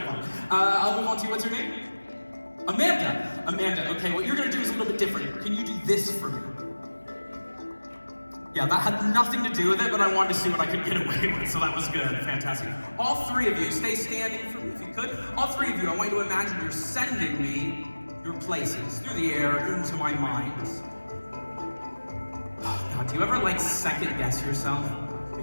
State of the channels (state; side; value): inverted; both; correlation -1.00